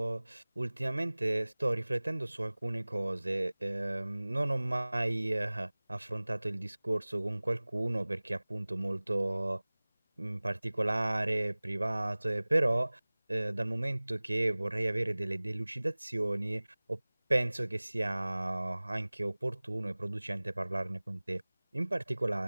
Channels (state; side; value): inverted; both; correlation -1.00